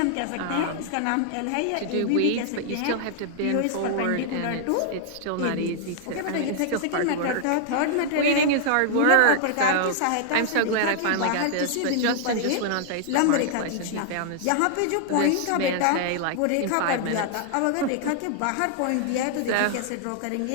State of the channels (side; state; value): both; different; correlation -0.01